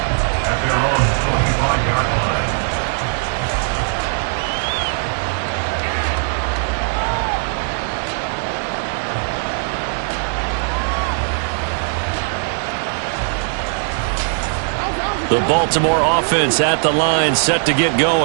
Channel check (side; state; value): left; silent; 66 dB below the other